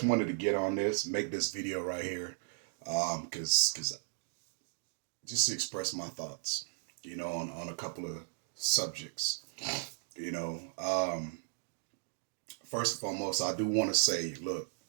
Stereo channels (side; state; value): left; silent; digital silence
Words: wanted to get on this, make this video right here, because just to express my thoughts, on a couple of subjects. You know, first and foremost, I do want to say, look,